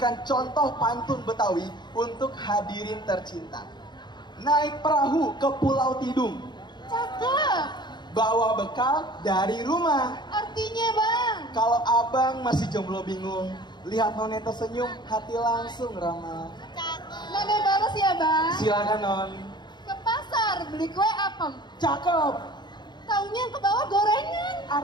contoh pantun Betawi untuk hadirin tercinta. Naik perahu ke Pulau Tidung, Cakep. bawa bekal dari rumah. Artinya bang, Kalau abang masih jomblo bingung, lihat None tersenyum, hati langsung ramah. None balas ya bang. Silakan Non. Ke pasar beli kue apem. Cakep. Taunya ke bawah gorengan.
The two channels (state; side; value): late; right; 0.21 ms